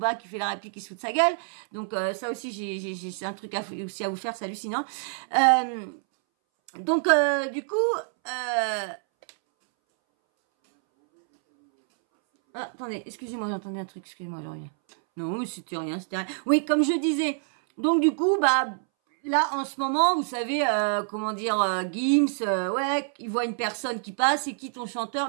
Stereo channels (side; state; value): left; silent; 60 dB below the other